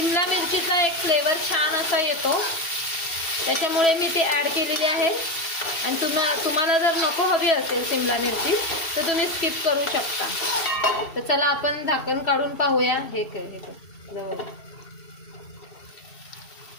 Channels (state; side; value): late; right; 2.7 ms